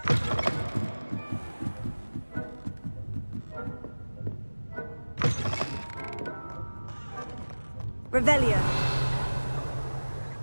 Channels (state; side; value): inverted; both; correlation -1.00